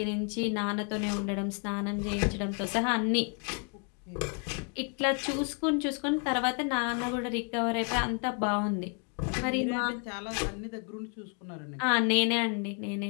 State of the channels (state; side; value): quieter; right; 39.4 dB